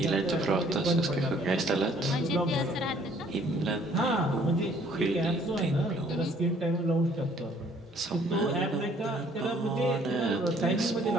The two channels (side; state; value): both; normal; correlation 0.60